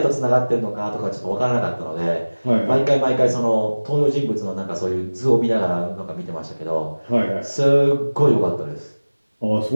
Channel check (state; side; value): inverted; both; correlation -1.00